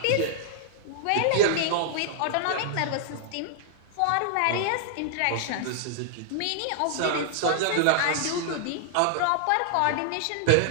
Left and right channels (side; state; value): both; different; correlation -0.01